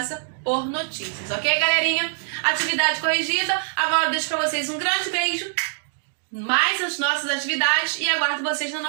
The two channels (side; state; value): left; silent; digital silence